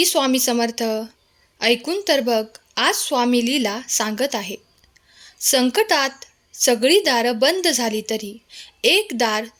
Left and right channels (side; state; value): both; identical; correlation 1.00